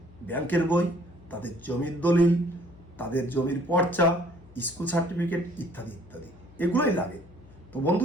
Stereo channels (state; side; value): noise; left; hum, 23 dB below the sound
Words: ব্যাংকের বই, তাদের জমির দলিল, তাদের জমির পর্চা, স্কুল সার্টিফিকেট ইত্যাদি ইত্যাদি এগুলোই লাগে। তো